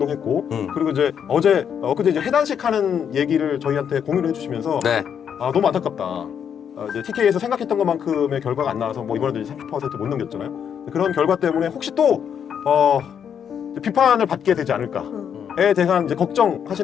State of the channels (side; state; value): right; quieter; 8.1 dB